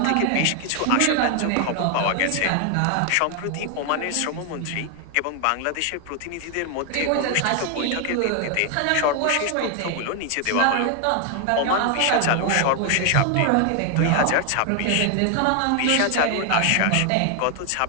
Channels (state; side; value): different; both; correlation 0.01